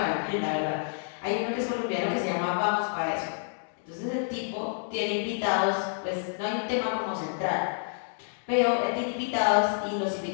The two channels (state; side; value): silent; right; digital silence